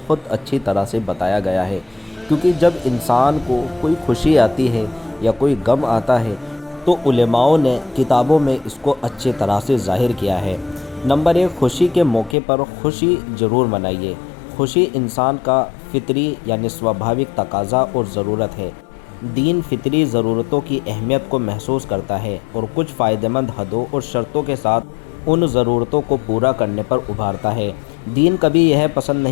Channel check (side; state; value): right; drops out; at 12.4 s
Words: اچھی طرح سے بتایا گیا ہے، کیونکہ جب انسان کو کوئی خوشی آتی ہے یا کوئی غم آتا ہے تو علماؤں نے کتابوں میں اس کو اچھی طرح سے ظاہر کیا ہے۔ نمبر 1، خوشی کے موقع پر خوشی ضرور منائیے۔ خوشی انسان کا فطری یعنی سوبھاوک تقاضا اور ضرورت ہے۔ دین فطری ضرورتوں کی اہمیت کو محسوس کرتا ہے اور کچھ فائدہ مند حدوں اور شرطوں کے ساتھ ان ضرورتوں کو پورا کرنے پر ابھارتا ہے۔ دین کبھی یہ پسند